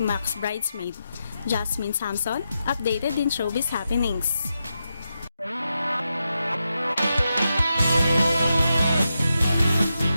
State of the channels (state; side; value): inverted; both; correlation -0.87